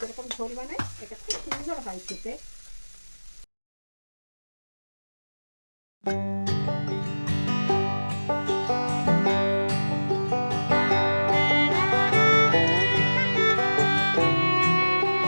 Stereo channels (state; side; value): inverted; both; correlation -1.00